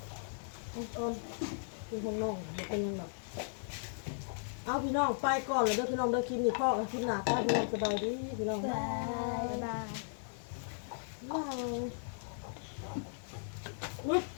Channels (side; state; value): right; silent; 53 dB below the other